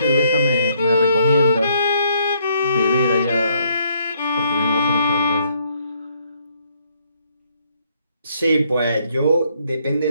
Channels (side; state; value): both; inverted; correlation -0.69